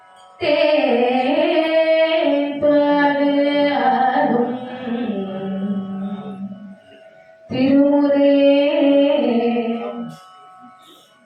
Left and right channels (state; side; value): identical; both; correlation 1.00